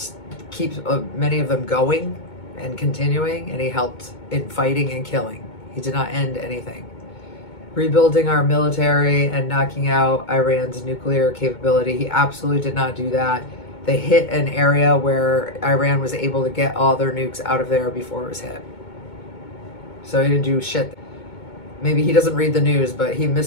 keep many of them going and continuing, and he helped in fighting and killing. He did not end anything. Rebuilding our military and knocking out Iran's nuclear capability, he absolutely did not do that. They hit an area where Iran was able to get all their nukes out of there before it was hit. So he didn't do shit. Maybe he doesn't read the news, but he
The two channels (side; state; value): right; late; 2.2 ms